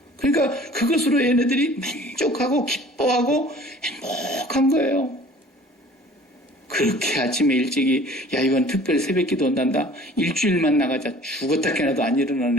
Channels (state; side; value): normal; both; correlation 0.49